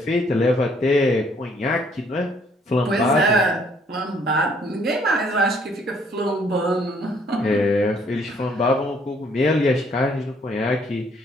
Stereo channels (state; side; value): normal; both; correlation 0.64